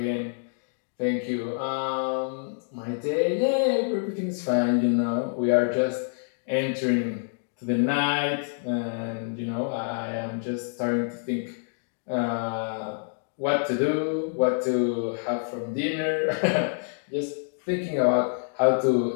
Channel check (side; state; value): right; silent; digital silence